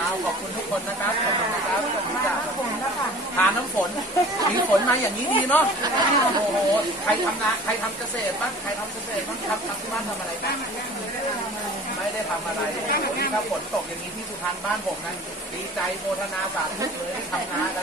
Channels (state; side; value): normal; both; correlation 0.44